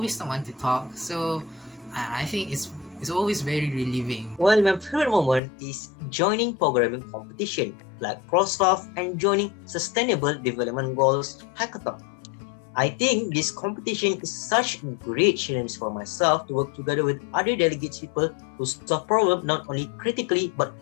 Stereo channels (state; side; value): drops out; right; at 5.4 s